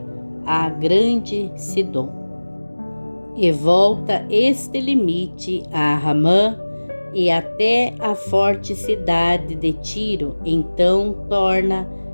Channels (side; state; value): both; inverted; correlation -1.00